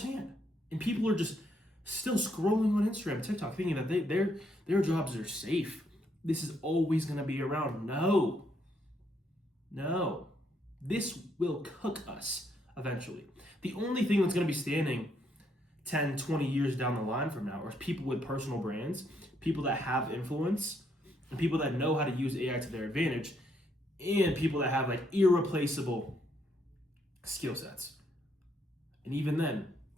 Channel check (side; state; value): both; normal; correlation 0.74